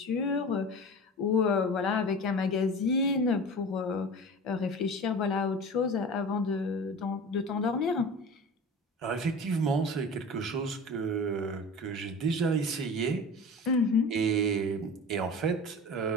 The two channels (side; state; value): both; normal; correlation 0.35